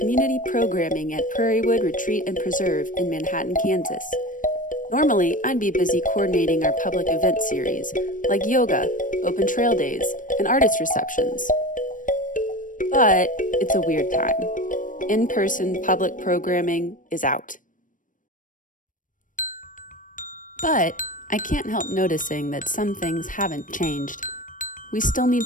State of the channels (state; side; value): late; right; 0.38 ms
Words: Programming at Prairiewood Retreat and Preserve in Manhattan, Kansas. Normally, I'd be busy coordinating our public event series, like yoga, open trail days, and artist receptions. But it's a weird time. In-person public programming is out. But I can't help noticing that some things haven't changed. We still need